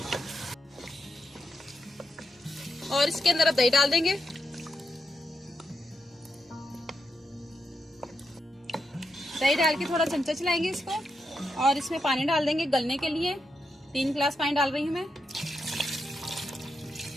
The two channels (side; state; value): both; normal; correlation 0.84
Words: और इसके अंदर अब दही डाल देंगे। दही डाल के थोड़ा चमचा चलाएंगे इसको, और इसमें पानी डाल देंगे गलने के लिए। 3 गिलास पानी डाल रही हूँ मैं।